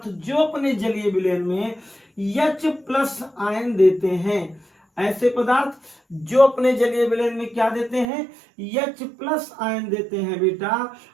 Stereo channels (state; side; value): drops out; left; at 8.1 s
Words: जो अपने जलीय विलयन में H+ आयन देते हैं। ऐसे पदार्थ जो अपने जलीय विलयन में क्या देते हैं? H+ आयन देते हैं बेटा,